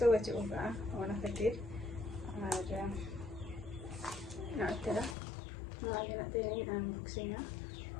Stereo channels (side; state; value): right; drops out; at 5.2 s